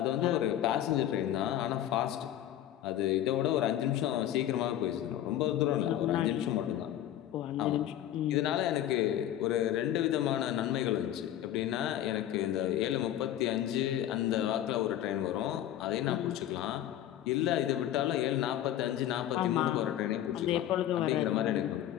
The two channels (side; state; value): right; quieter; 12.0 dB